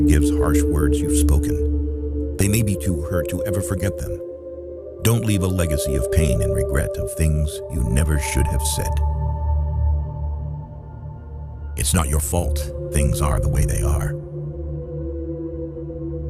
harsh words you've spoken, they may be too hurt to ever forget them. Don't leave a legacy of pain and regret of things you never should have said. It's not your fault things are the way they are.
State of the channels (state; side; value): identical; both; correlation 1.00